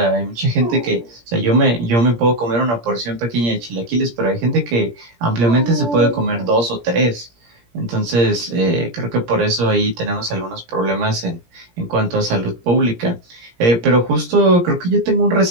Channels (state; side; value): late; left; 17 ms